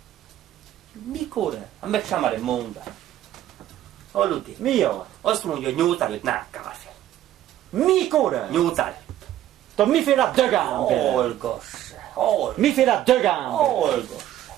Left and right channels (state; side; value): quieter; left; 12.6 dB